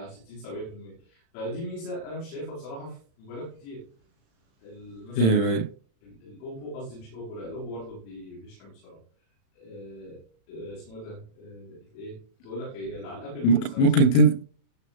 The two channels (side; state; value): right; late; 36 ms